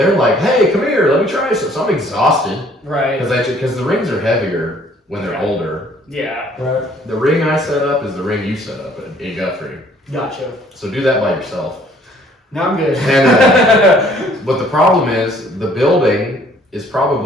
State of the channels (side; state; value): both; normal; correlation 0.59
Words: like, "Hey, come here, let me try this." So I'm exhausted, right? Because the rings are heavier when they're older. Yeah. Right. The ring I set up is the ring you set up in Guthrie. Gotcha. So do that by yourself. No, I'm good. And but the problem is the building is